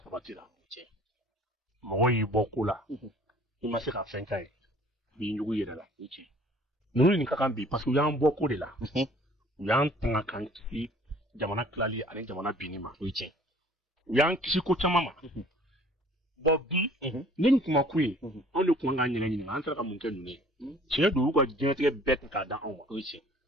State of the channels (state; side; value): normal; both; correlation 0.53